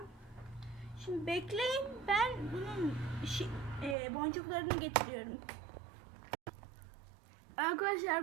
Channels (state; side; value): drops out; left; at 4.0 s